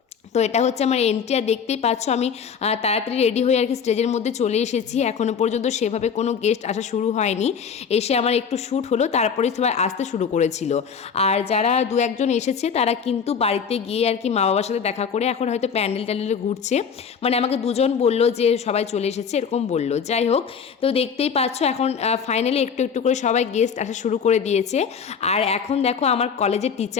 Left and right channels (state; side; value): quieter; right; 6.6 dB